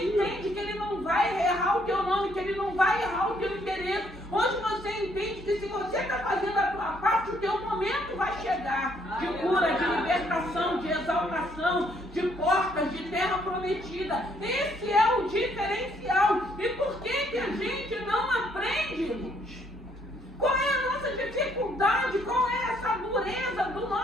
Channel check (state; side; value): normal; both; correlation 0.68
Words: entende que Ele não vai errar o teu nome, que Ele não vai errar o teu interesse. Hoje você entende que se você está fazendo a tua parte, o teu momento vai chegar. De cura, de libertação, de exaltação, de portas, de terra prometida. Esse é o diferencial. E por que a gente não aprende, gente? Qual é a nossa dificuldade? Qual é essa dureza do